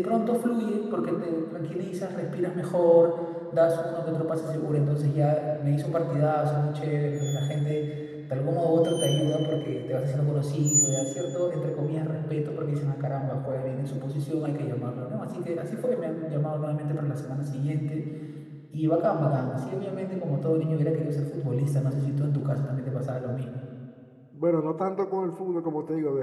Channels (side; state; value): both; identical; correlation 1.00